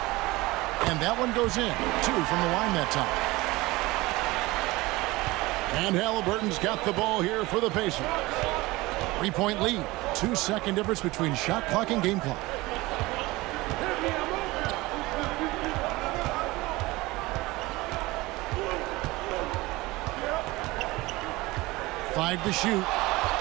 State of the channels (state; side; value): quieter; left; 20.8 dB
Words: And that one goes in. 2 from the line that time. And Halliburton's got the ball here for the Pacers. 3-point lead. 2-second difference between shot clock and game clock. Five to shoot.